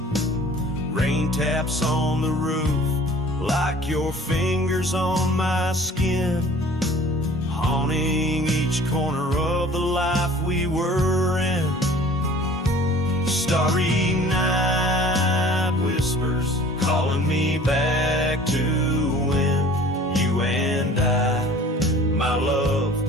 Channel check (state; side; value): normal; both; correlation 0.48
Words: Rain taps on the roof like your fingers on my skin, haunting each corner of the life we were in. Starry night whispers